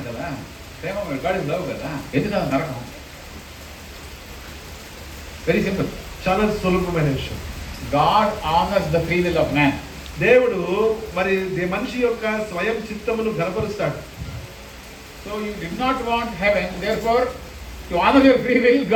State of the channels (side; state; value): both; identical; correlation 1.00